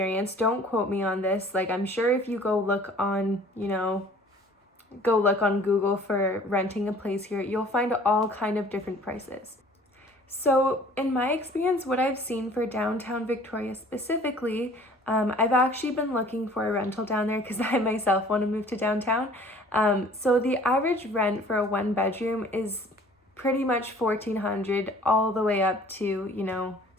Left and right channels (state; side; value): normal; both; correlation 0.51